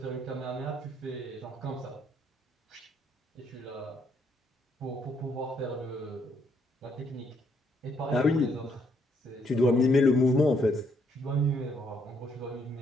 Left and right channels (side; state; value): both; normal; correlation 0.71